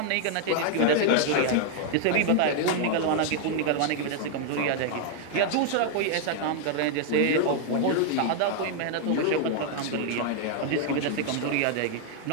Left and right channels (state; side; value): different; both; correlation 0.00